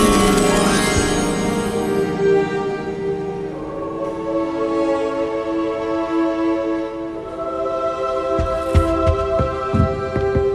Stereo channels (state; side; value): identical; both; correlation 1.00